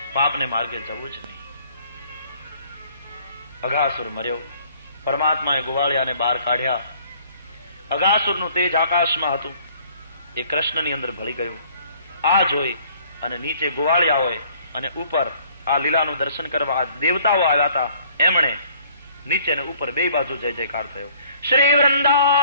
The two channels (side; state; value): both; inverted; correlation -0.58